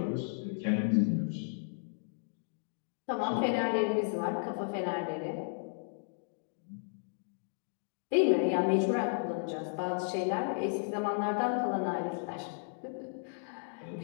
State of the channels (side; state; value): right; silent; digital silence